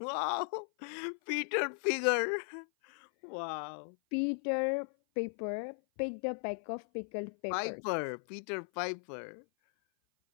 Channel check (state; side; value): silent; right; 53 dB below the other